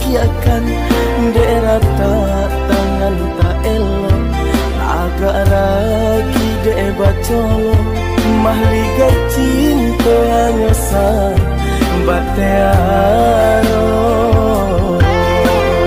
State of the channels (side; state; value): both; identical; correlation 1.00